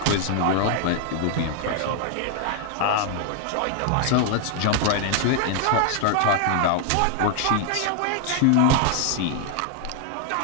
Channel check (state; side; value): different; both; correlation 0.00